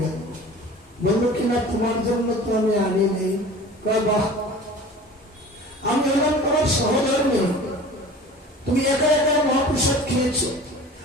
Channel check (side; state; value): both; normal; correlation 0.41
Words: গেল। বললো কিনা তোমার জন্য তো আমি আনি নেই। বাহ, আমি হলাম তোমার সহধর্মী, তুমি একা একা মহাপ্রসাদ খেয়েছো,